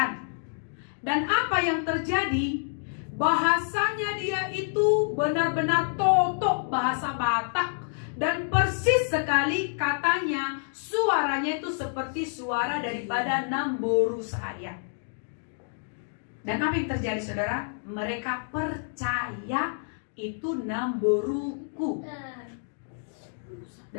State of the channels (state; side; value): silent; right; digital silence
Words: Dan apa yang terjadi? Bahasanya dia itu benar-benar totok bahasa Batak. Dan persis sekali katanya, suaranya itu seperti suara daripada Namboru saya. Dan apa yang terjadi saudara? Mereka percaya itu Namboruku.